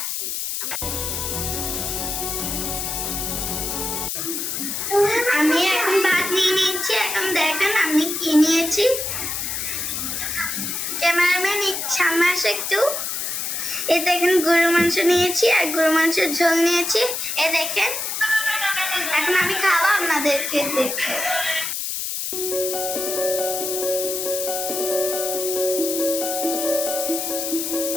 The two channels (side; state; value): left; noise; hiss, 3 dB below the sound